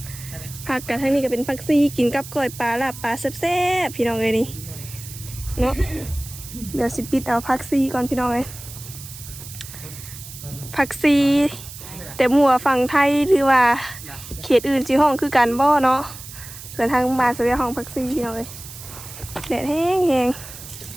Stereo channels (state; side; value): noise; right; hiss, 14 dB below the sound